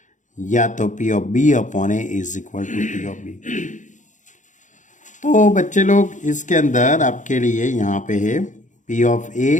या तो P of B upon A is equal to P of B। तो बच्चे लोग इसके अंदर आपके लिए यहाँ पे है P of A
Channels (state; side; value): late; right; 0.36 ms